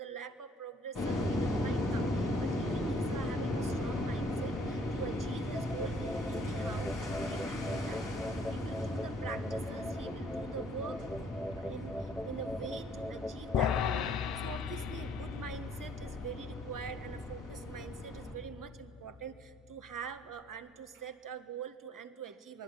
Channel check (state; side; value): normal; both; correlation 0.62